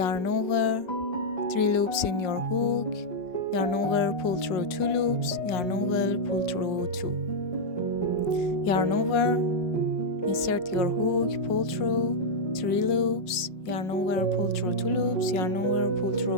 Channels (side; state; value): right; late; 5.6 ms